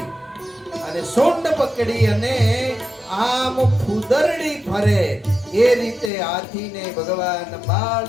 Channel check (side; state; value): right; drops out; at 6.1 s